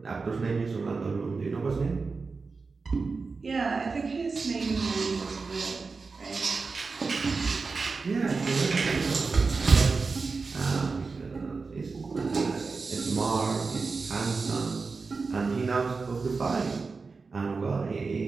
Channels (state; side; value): quieter; left; 4.4 dB